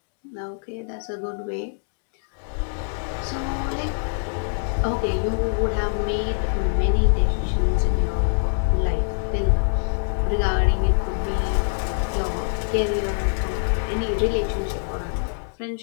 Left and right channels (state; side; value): silent; right; digital silence